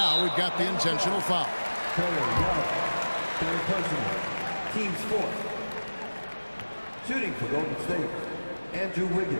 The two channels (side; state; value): both; inverted; correlation -1.00